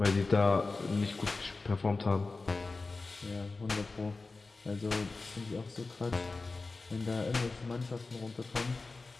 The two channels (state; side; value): quieter; right; 3.7 dB